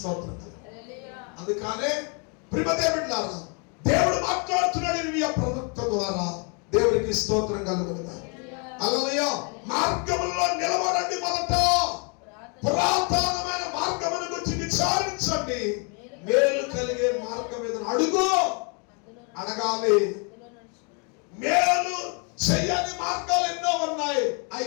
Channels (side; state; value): right; quieter; 36.1 dB